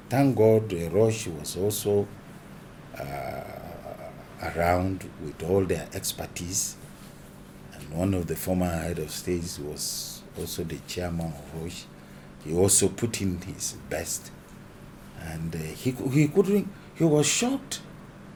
Thank God Roche was also around with all their expertise. And one of the former head of states was also the chairman of Roche. He also put in his best. And he was shocked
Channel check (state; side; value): identical; both; correlation 1.00